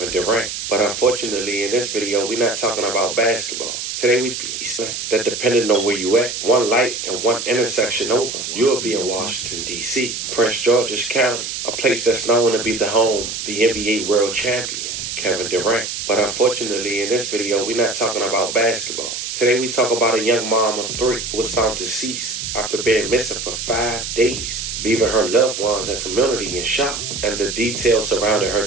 Durant. But unfortunately, in this video, we're not talking about basketball. Today we be that, depending on where you at, one light and one intersection over, you'll be in Washington, D.C., Prince George's County, a place that's known to be the home of the NBA world champion, Kevin Durant. But unfortunately, in this video, we're not talking about basketball. Today we talk about a young mom of 3 who was found deceased after being missing for 5 days, leaving her loved ones and community in shock. And the details surrounding her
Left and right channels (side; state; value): right; noise; hiss, 5 dB below the sound